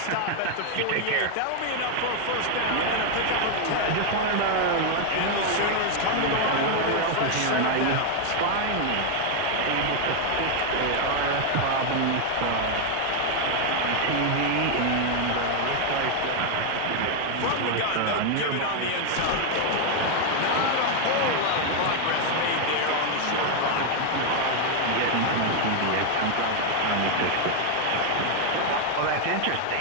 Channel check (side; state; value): both; different; correlation 0.00